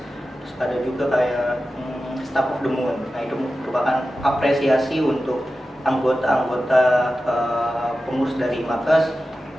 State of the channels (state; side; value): normal; both; correlation 0.93